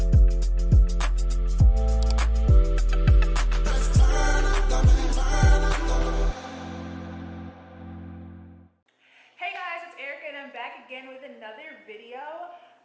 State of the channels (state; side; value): identical; both; correlation 1.00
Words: Hey guys, it's Erika and I'm back again with another video.